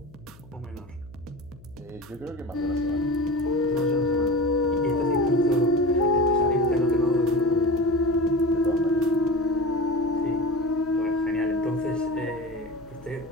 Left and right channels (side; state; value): left; noise; hum, 23 dB below the sound